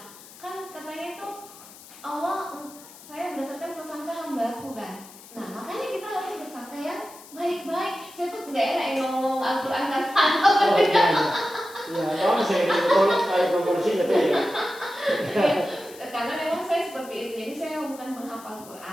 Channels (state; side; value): noise; left; hiss, 19 dB below the sound